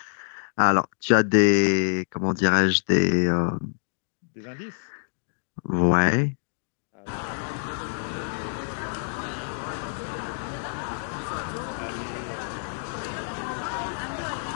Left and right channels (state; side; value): silent; right; digital silence